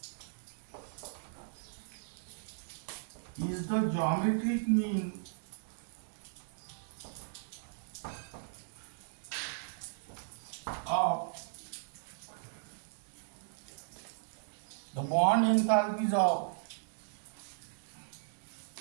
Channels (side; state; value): left; silent; digital silence